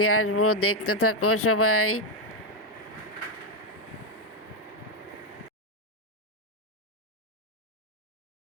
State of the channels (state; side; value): normal; both; correlation 0.04